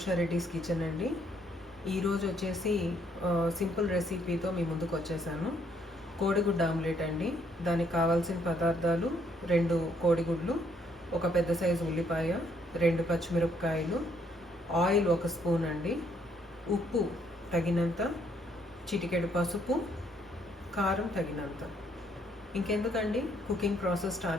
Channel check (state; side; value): normal; both; correlation 0.69